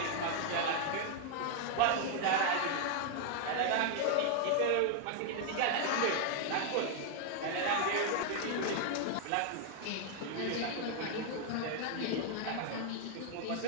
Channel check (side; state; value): both; different; correlation 0.00